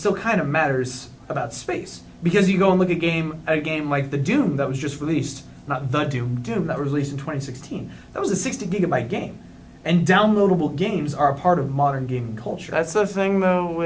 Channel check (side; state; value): both; identical; correlation 1.00